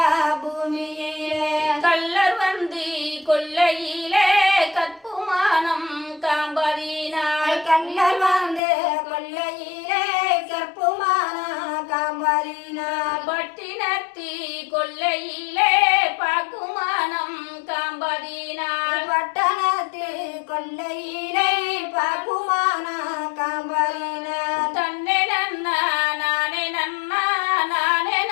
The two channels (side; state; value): right; drops out; at 8.6 s